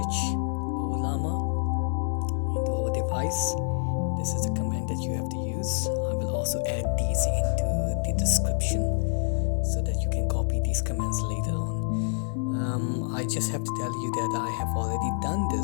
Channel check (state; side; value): silent; right; digital silence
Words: Ollama into our device. This is the command that you have to use. I will also add these into the description so that you can copy these commands later on. I just have to tell you that I have already done